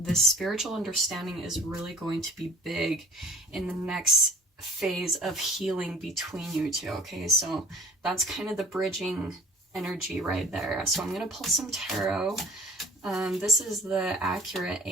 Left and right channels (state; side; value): normal; both; correlation 0.49